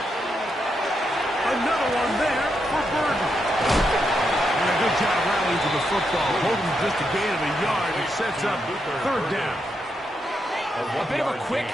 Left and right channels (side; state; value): both; normal; correlation 0.82